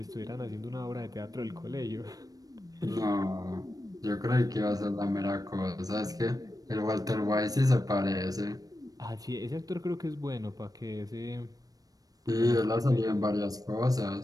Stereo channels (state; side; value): late; left; 0.18 ms